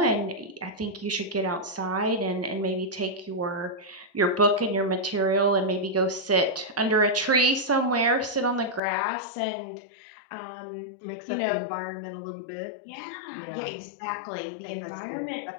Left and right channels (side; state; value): right; drops out; at 8.8 s